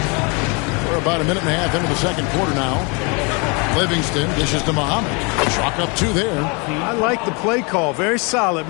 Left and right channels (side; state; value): right; quieter; 31.5 dB